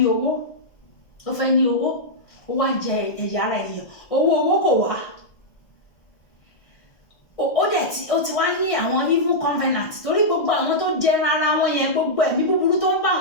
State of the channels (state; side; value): late; right; 1.6 ms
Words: owó. Ó fẹ́ ní owó ó wá ń jẹ ẹ̀yà ara ènìyàn. Owó kò wá. Ó ti wá ní àwọn evil covenant torí gbogbo àwọn tó jẹ ara wọn yẹn gbogbo ẹ̀mí búburú tó ń bá